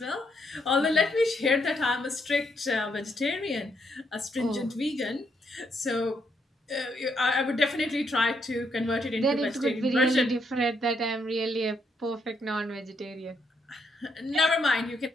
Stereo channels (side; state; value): both; normal; correlation 0.76